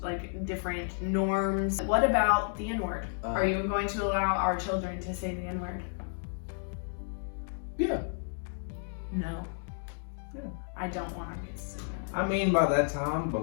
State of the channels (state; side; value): silent; right; digital silence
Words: like different norms. What about the N-word? Are you going to allow our children to say the N-word? Yeah. No. Yeah. I don't want our kids to say that. I mean, by that time, but